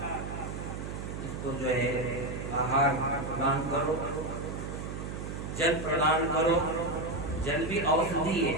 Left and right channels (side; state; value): right; noise; hum, 7 dB below the sound